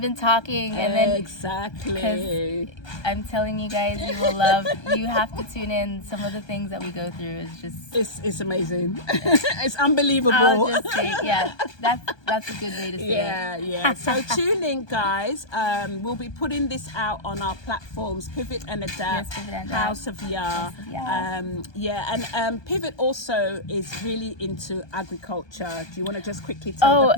talking, and then exactly. I'm telling you guys, you will love. You have to tune in. Some of the things that we go through is just it's amazing. It's unbelievable. I'll just say, that's a good way to say it. Yeah. So tune in, guys. We'll be putting this out on our platforms, Pivot and Adapt, House of Ya. And Pivot also is really into agriculture. Do you want to just quickly tell the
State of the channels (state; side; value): late; right; 1.2 ms